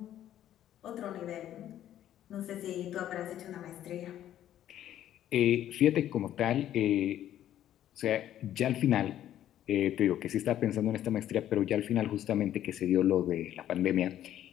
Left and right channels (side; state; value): right; quieter; 11.7 dB